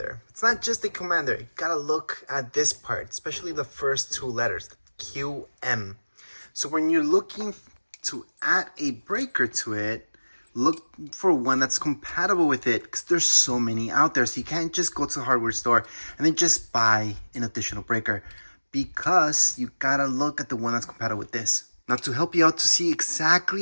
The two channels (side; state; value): both; inverted; correlation -1.00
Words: It's not just a commander, you gotta look at this part, especially the first two letters, QM. So when you're looking to add a breaker to it, look for one that's compatible with it because there's so many out there. So you can't just go to the hardware store and then just buy an additional breaker because you gotta look at the one that's compatible with this. Now to help you out to see